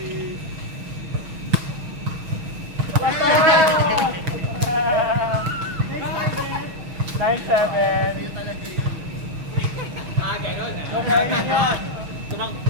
Nine, 7. Ganon ah. So, kaya yun.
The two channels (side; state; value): left; late; 6.4 ms